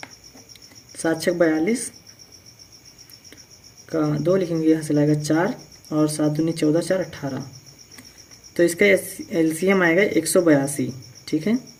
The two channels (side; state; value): both; identical; correlation 1.00